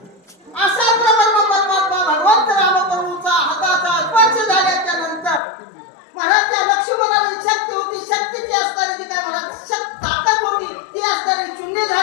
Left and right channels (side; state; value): right; drops out; at 5.4 s